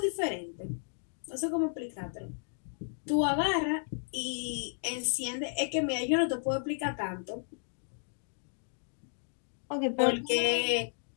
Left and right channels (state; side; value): silent; right; digital silence